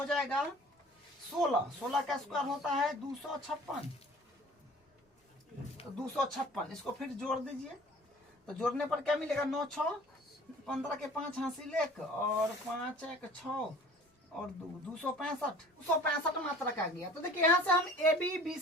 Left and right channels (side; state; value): both; normal; correlation 0.48